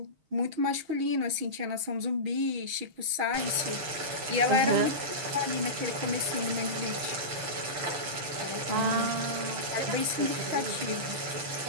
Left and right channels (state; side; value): late; left; 6.3 ms